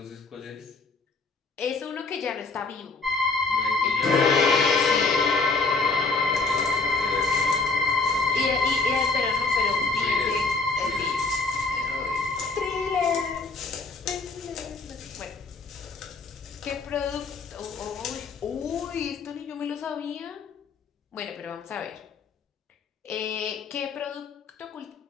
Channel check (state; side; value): quieter; right; 3.8 dB